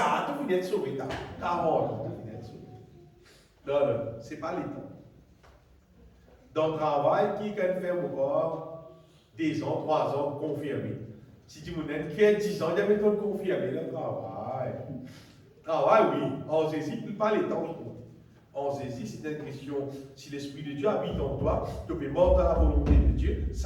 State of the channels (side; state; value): both; identical; correlation 1.00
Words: tu viens être sauvé. 40 ans, tu viens être sauvé. Non, ce n'est pas les temps. Dans le travail, qui peut faire encore 2 ans, 3 ans, confirmé. Si tu me dis qui a 10 ans, il y a méthode confirmée, le travail. Travail, oui. En saisit, pas les temps. En saisit, c'est une question. Si l'Esprit de Dieu habite en toi, tu peux mort dans la volonté de Dieu,